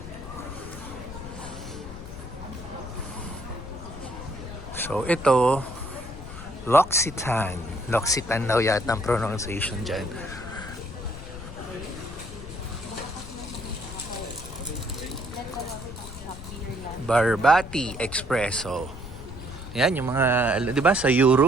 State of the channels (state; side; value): noise; left; rumble, 12 dB below the sound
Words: So, ito, L'Occitane. L'Occitane daw yata ang pronunciation dyan. Barbati Espresso. Yan, yung mga, di ba sa